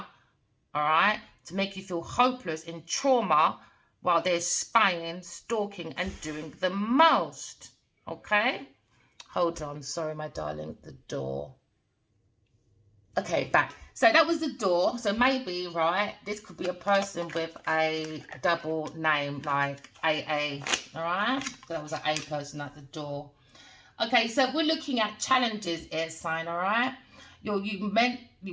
all right, to make you feel hopeless in trauma while they're spying, stalking, and doing the most, okay? Hold on, sorry, my darling, the door. Okay, back. So that was the door. So maybe, right, this could be a person with a double name like AA, all right? So that was an A person at the door. Okay, so we're looking at challenges, air sign, all right? You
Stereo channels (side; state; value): both; identical; correlation 1.00